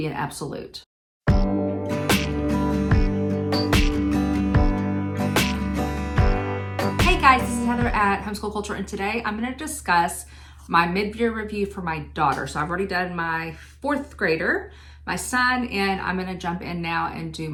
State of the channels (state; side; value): identical; both; correlation 1.00